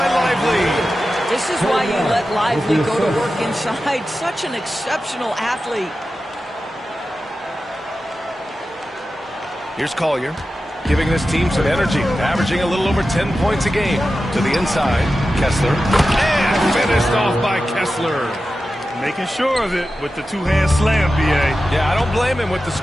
Lively. This is why you let Lively go to work inside. Such an exceptional athlete. Here's Collier, giving this team some energy, averaging a little over 10 points a game. To the inside, Kessler. And finished off by Kessler. Making sure of it with the 2-hand slam, B.A. Yeah, I don't blame him. With the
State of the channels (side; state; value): both; normal; correlation 0.93